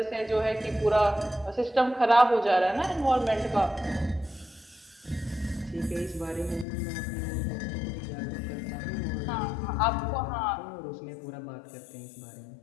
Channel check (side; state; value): right; drops out; at 6.7 s